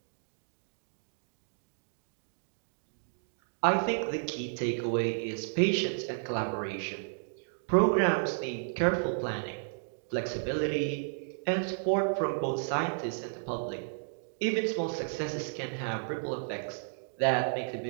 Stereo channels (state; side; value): silent; left; digital silence